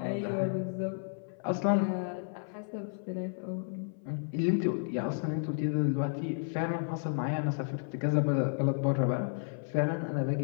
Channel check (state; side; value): silent; right; 56 dB below the other